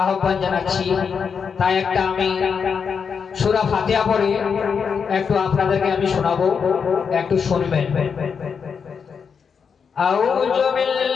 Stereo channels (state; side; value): quieter; right; 6.3 dB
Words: আহ্বান জানাচ্ছি। তাই একটা আমি সূরা ফাতিহা পড়ে একটু আপনাদেরকে আমি শোনাবো, একটু শুনবেন। আউযু